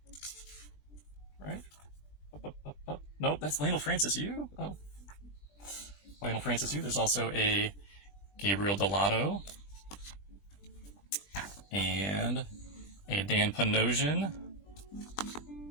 Right? Up. Nope, that's Lionel Francis Yu. Oh. Lionel Francis Yu. There's also a Gabriel Delato. And a Dan Panosian.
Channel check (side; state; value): right; late; 20 ms